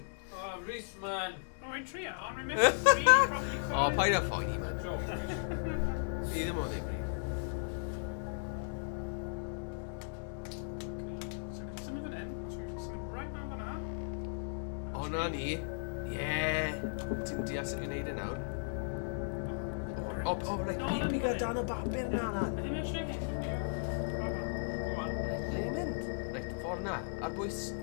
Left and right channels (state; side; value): silent; right; digital silence